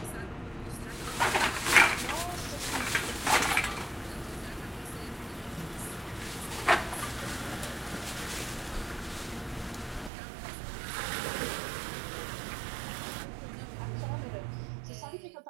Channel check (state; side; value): drops out; left; at 10.1 s